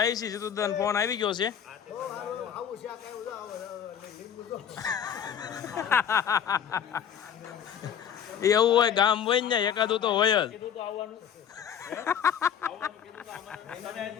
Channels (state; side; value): quieter; right; 8.6 dB